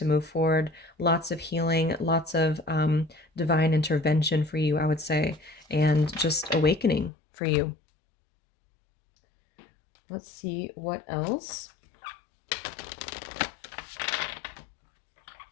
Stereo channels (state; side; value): drops out; right; at 7.1 s